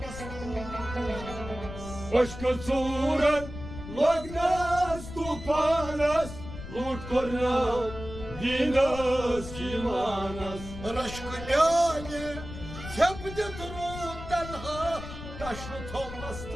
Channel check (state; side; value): noise; left; rumble, 11 dB below the sound